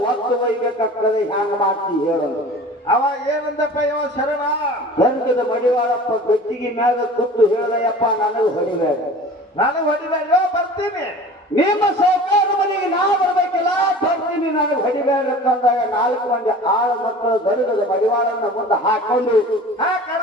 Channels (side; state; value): both; normal; correlation 0.41